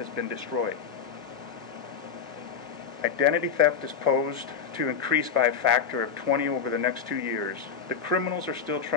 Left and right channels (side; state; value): right; quieter; 6.6 dB